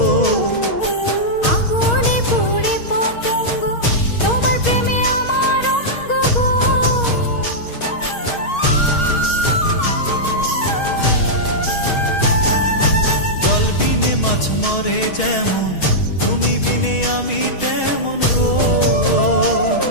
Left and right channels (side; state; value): right; late; 6.3 ms